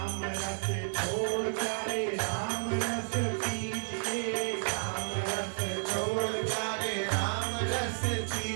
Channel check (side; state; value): left; silent; digital silence